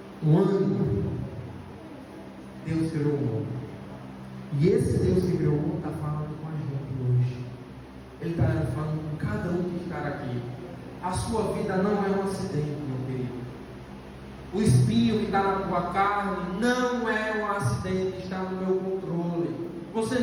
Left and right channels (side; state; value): both; identical; correlation 1.00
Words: um ânimo. Deus criou o mundo. E esse Deus que criou o mundo está falando com a gente hoje. Ele está falando com cada um que está aqui. A sua vida não é um acidente, meu querido. O espinho que está na tua carne não é um acidente, está no meu controle. Você